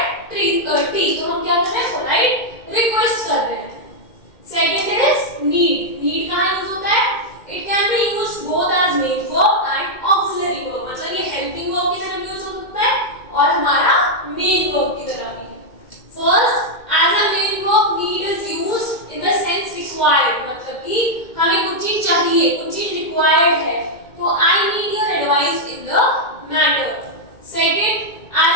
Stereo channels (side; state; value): right; late; 2.2 ms